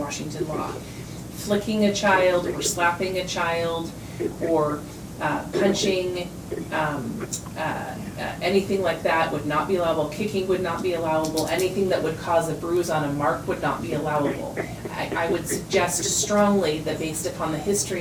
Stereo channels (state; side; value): identical; both; correlation 1.00